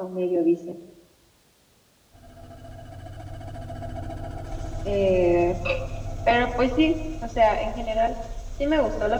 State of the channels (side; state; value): both; identical; correlation 1.00